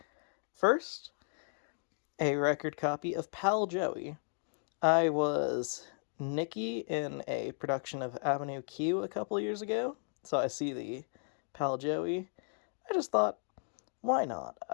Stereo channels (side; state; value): right; silent; 55 dB below the other